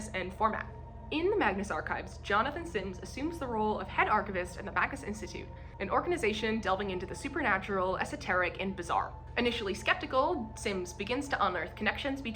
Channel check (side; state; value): both; identical; correlation 1.00